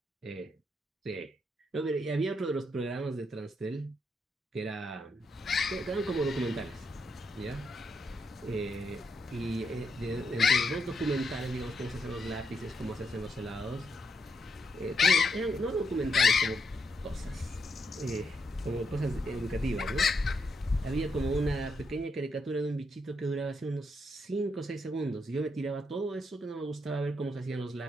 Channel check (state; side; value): normal; both; correlation 0.80